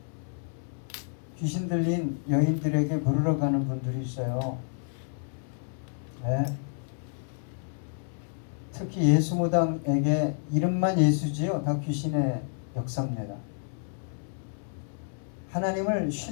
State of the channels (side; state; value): right; silent; digital silence